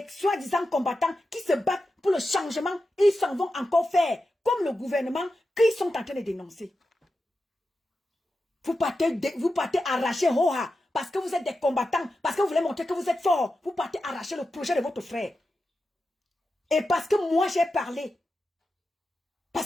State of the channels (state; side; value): normal; both; correlation 0.90